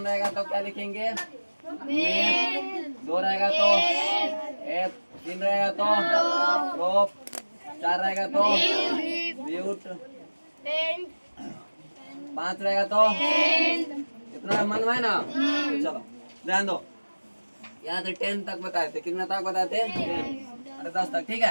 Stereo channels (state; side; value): inverted; both; correlation -1.00